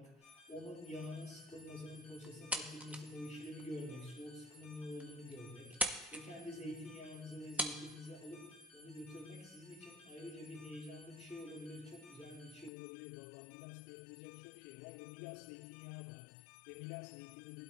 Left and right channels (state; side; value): drops out; right; at 12.7 s